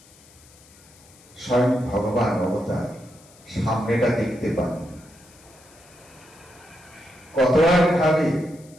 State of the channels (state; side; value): noise; left; hiss, 25 dB below the sound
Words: স্বয়ং ভগবান অবতার সামনেটা দেখতে পান, কত আর খাবে,